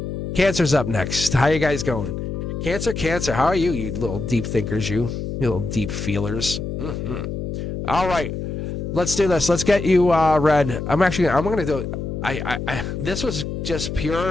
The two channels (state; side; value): noise; left; hum, 5 dB below the sound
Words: Cancer's up next. How you guys going? Cancer, how are you, you little deep thinkers, you little deep feelers? Mm-hmm. All right, let's do this. Let's get you read. I'm going to do. This was just